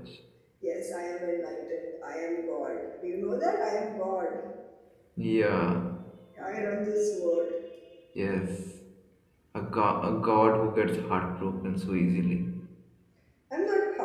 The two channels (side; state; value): both; identical; correlation 1.00